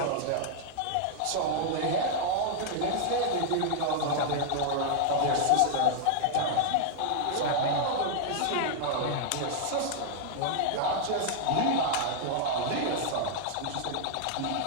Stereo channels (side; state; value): both; different; correlation 0.00